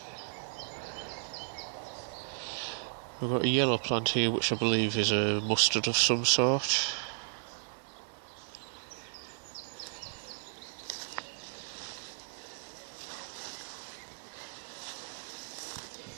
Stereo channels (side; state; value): left; silent; 55 dB below the other